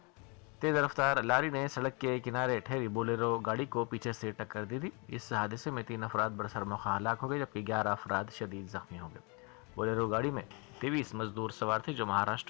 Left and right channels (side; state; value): right; quieter; 31.8 dB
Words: तेज़ रफ्तार लारी ने सड़क के किनारे ठहरी बोलेरो गाड़ी को पीछे से टक्कर दी थी। इस हादसे में 3 अफराद बरसर मौका हलाक हो गए, जबकि 11 अफराद शदीद जख्मी हो गए। बोलेरो गाड़ी में 23 मजदूर सवार थे जो